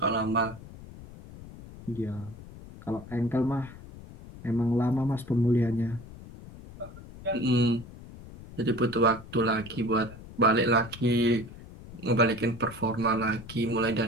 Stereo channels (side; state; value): left; noise; rumble, 16 dB below the sound